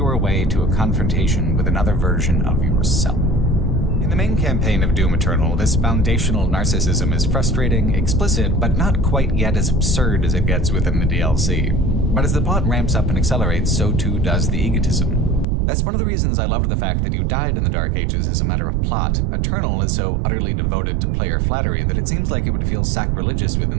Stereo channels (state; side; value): drops out; left; at 15.5 s